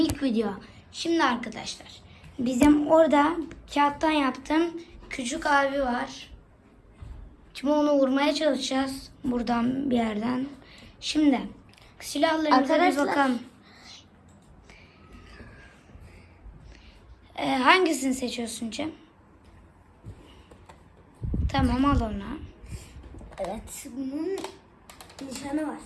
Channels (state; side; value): identical; both; correlation 1.00